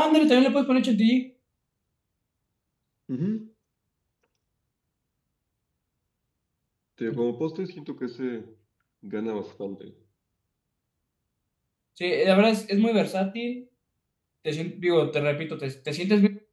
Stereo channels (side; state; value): both; identical; correlation 1.00